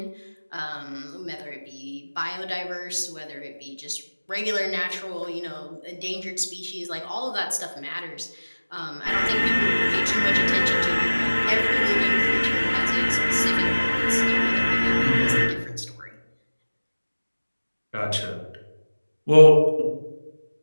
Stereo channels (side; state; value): both; inverted; correlation -1.00